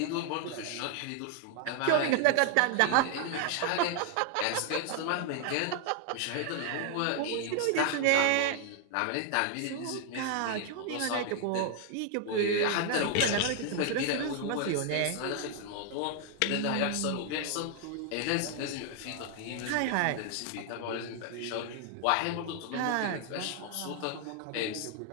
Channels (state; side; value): different; both; correlation 0.00